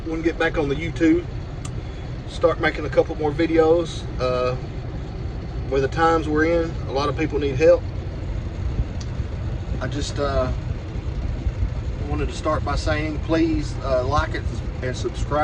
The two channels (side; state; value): both; identical; correlation 1.00